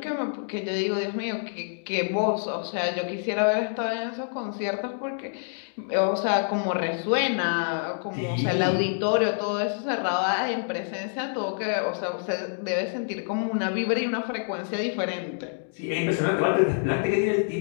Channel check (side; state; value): right; silent; digital silence